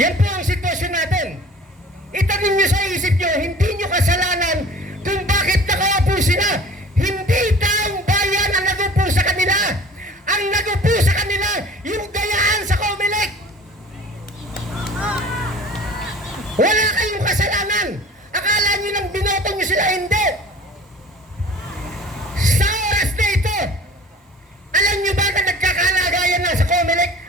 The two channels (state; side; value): normal; both; correlation 0.45